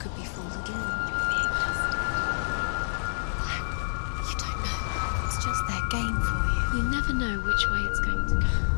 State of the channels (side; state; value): right; silent; digital silence